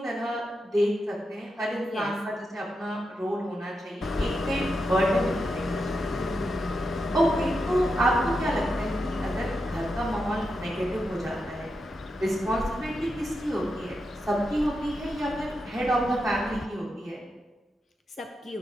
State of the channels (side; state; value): both; normal; correlation 0.87